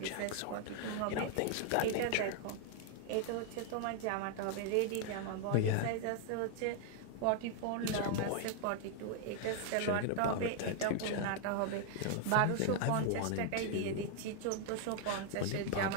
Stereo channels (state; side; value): different; both; correlation 0.00